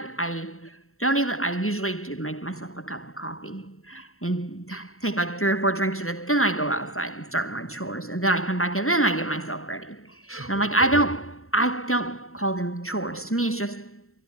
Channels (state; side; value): late; right; 0.63 ms